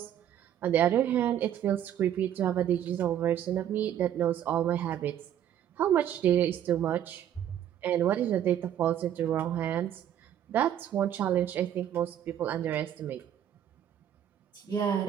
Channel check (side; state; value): left; quieter; 10.4 dB